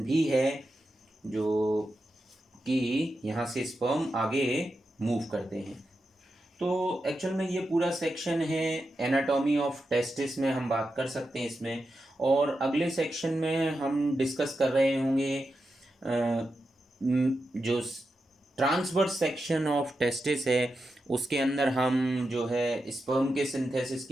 भी है जो कि यहाँ से स्पर्म आगे मूव करते हैं। तो एक्चुअल में ये पूरा सेक्शन है एनाटॉमी ऑफ टेस्टिस में हम बात कर सकते हैं इसमें। और अगले सेक्शन में हम डिस्कस कर रहे होंगे जो ट्रांसवर्स सेक्शन ऑफ टेस्टिस है उसके अंदर हम जो है स्पर्म के सिंथेसिस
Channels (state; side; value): normal; both; correlation 0.89